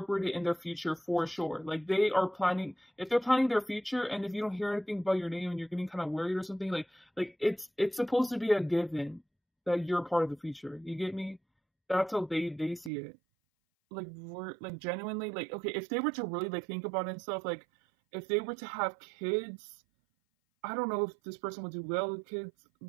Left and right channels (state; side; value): drops out; left; at 12.9 s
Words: in their future for sure. Like they are planning, if they're planning their future, and if you don't hear anything about your name and you're getting kind of worried or something, like it's supposed to be a given that you're a part of the future. You get me? That's how they see it. Like we're like genuinely like, okay, if they were to really like think about it and stuff, like if they were to have kids, I don't know if this person would do well with kids,